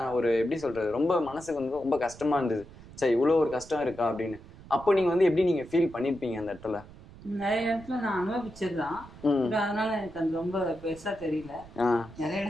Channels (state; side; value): noise; right; rumble, 19 dB below the sound